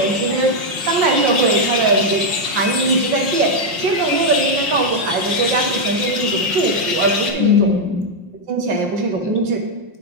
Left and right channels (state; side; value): late; left; 5.6 ms